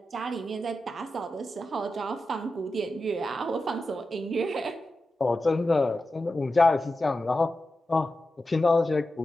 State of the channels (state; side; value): normal; both; correlation 0.92